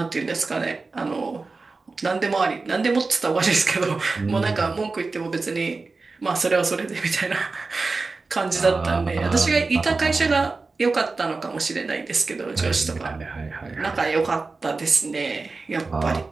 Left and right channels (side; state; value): left; quieter; 3.9 dB